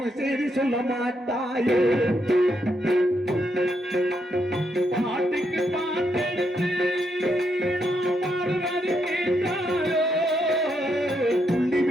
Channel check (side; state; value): both; normal; correlation 0.79